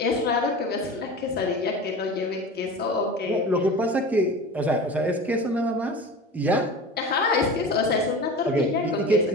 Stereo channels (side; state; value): both; normal; correlation 0.34